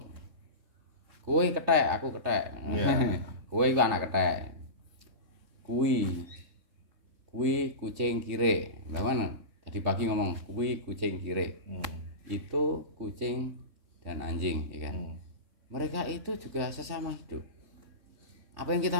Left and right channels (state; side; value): late; left; 3.4 ms